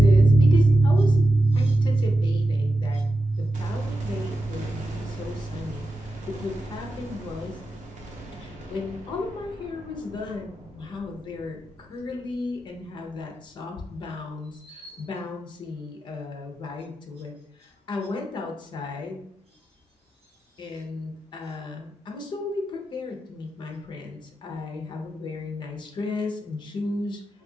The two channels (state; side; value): normal; both; correlation 0.90